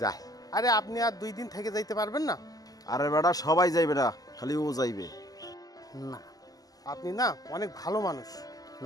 যায়। আরে আপনি আর 2 দিন থেকে যাইতে পারবেন না? আরে বেটা সবাই যাইবে না, খালি ও যাইবে। না আপনি না অনেক ভালো মানুষ।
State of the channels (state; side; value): late; right; 0.18 ms